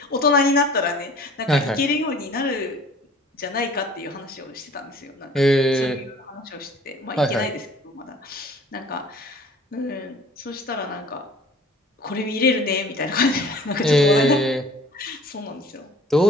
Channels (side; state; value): both; normal; correlation 0.49